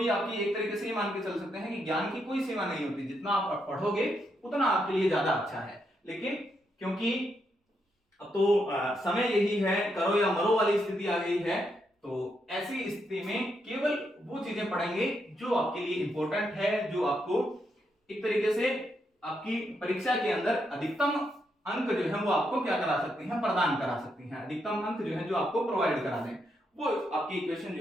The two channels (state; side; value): normal; both; correlation 0.80